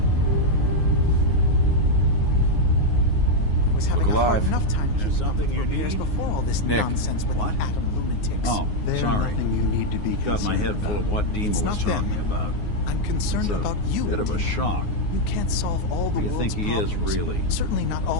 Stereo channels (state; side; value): late; right; 9.6 ms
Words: I was having Look a hard alive. enough time There's keeping up something with you repairs need? before all this Nick. nonsense with What? the atom lunatics. Oh, There's sorry. nothing you need to be Got my head concerned full of about. what Dima It's was not them. talking about. I'm concerned It's a about you. bit of a Dima. shock. You can't solve all the Who do you world's think he is, problems. really? Certainly not